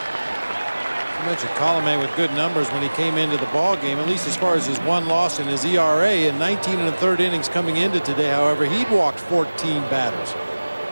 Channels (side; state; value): both; inverted; correlation -1.00